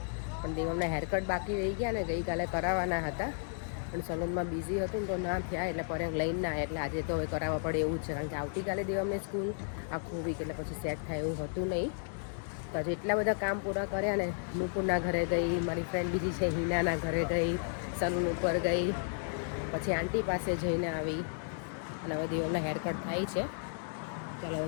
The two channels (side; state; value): right; silent; digital silence